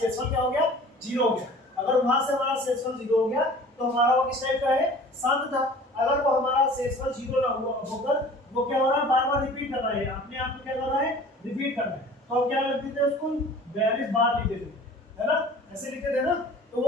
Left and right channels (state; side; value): normal; both; correlation 0.46